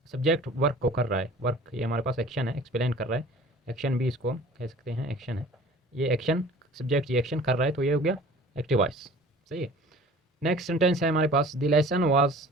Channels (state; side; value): normal; both; correlation 0.46